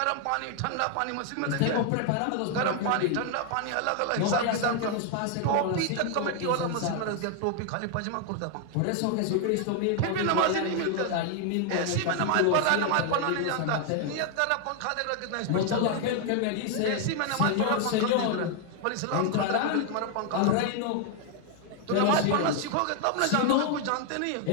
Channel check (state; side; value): different; both; correlation 0.00